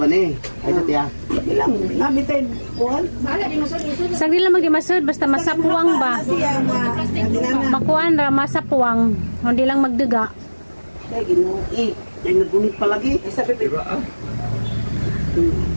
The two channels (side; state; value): both; inverted; correlation -1.00